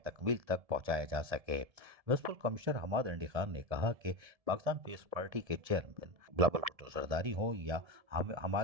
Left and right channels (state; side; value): late; left; 1.7 ms